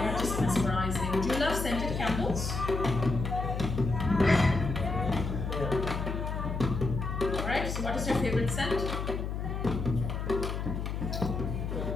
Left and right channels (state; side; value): noise; left; hum, 3 dB below the sound